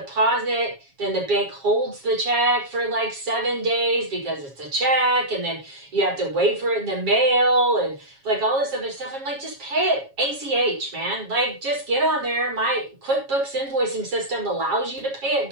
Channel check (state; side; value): late; left; 7.3 ms